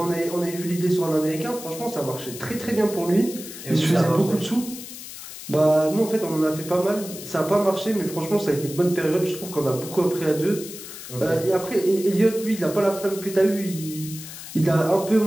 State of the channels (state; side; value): noise; left; hiss, 12 dB below the sound